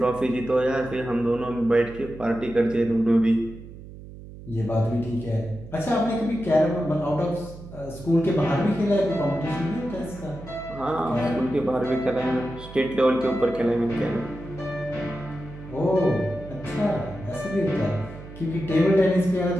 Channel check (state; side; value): noise; right; hum, 15 dB below the sound